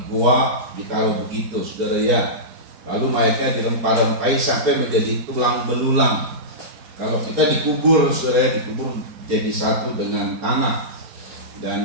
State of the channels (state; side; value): late; left; 4.3 ms